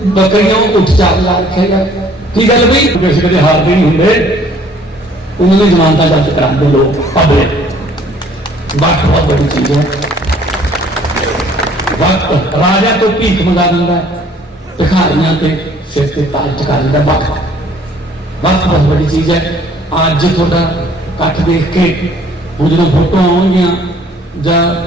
बकरियां उठ चार ला रखे यार। की गल भाई किसी कदे हारते नहीं होंगे, उन्होंने जमानत दर्ज कराते लोग पब्लिक। वक्त बहुत बड़ी चीज है। वक्त राजा तो भीख मंगा दिंदा है, भिखारियां ते सिर ते ताज टिका दिंदा। वक्त वक्त बहुत बड़ी चीज है। अज थोड़ा कट देख के हम जो फोटो आउणगियां जां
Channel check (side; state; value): both; normal; correlation 0.57